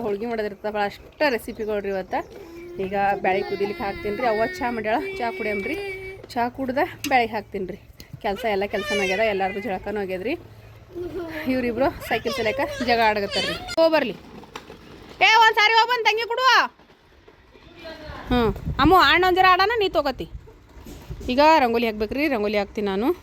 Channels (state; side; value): identical; both; correlation 1.00